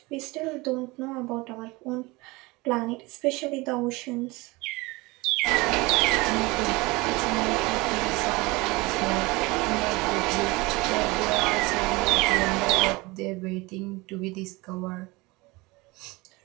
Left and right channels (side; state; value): left; quieter; 23.3 dB